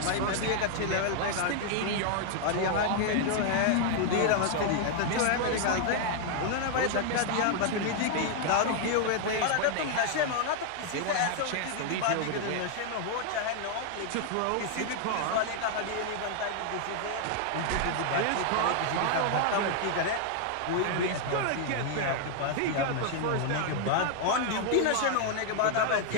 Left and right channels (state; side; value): different; both; correlation 0.00